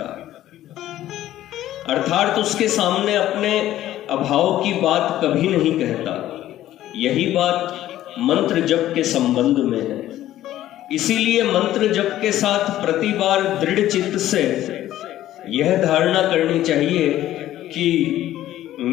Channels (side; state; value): right; quieter; 13.5 dB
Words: अर्थात उसके सामने अपने अभाव की बात कभी नहीं कहता। यही बात मंत्र जप के संबंध में है। इसीलिए मंत्र जप के साथ प्रति बार दृढ़ चित्त से यह धारणा करनी चाहिए कि